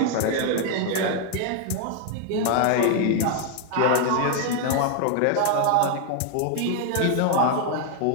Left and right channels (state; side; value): different; both; correlation 0.00